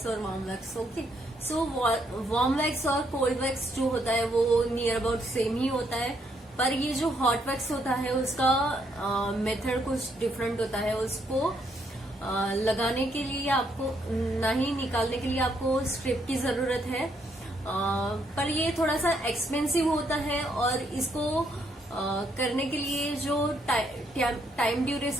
और warm wax. Okay, so warm wax और cold wax जो होता है वो नियर अबाउट सेम ही होता है, पर ये जो hot wax होता है उसका मेथड कुछ डिफरेंट होता है। उसको लगाने के लिए आपको ना ही निकालने के लिए आपको स्ट्रिप की जरूरत है, पर ये थोड़ा सा एक्सपेंसिव होता है। और इसको करने के लिए जो टाइम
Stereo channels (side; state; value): both; normal; correlation 0.73